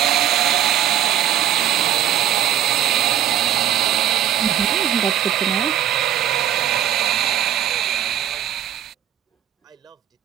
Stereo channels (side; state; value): left; quieter; 11.0 dB